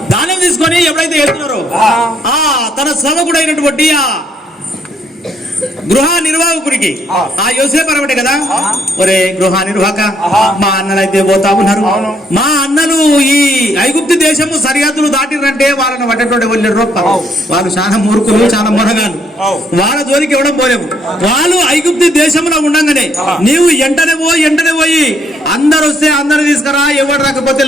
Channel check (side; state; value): both; normal; correlation 0.70